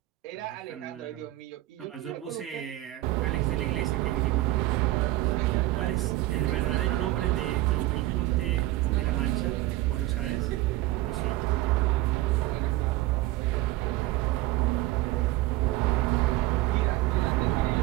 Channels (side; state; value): left; quieter; 17.0 dB